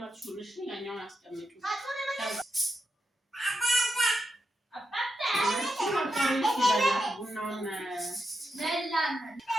እሺ፣ ያኛውን አስቀምጪ። ቡናውን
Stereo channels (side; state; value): both; normal; correlation 0.86